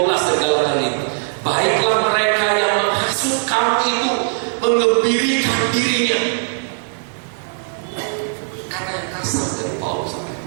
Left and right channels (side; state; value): left; silent; digital silence